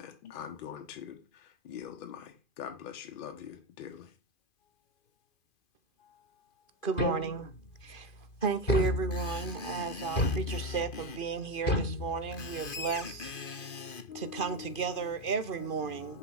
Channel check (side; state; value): right; late; 2.5 ms